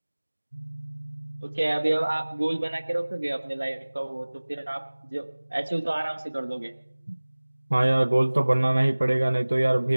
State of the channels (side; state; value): both; inverted; correlation -1.00